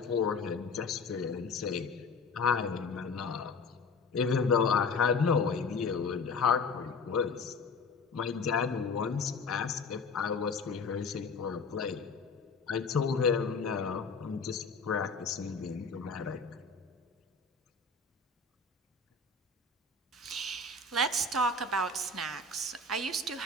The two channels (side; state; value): right; quieter; 4.1 dB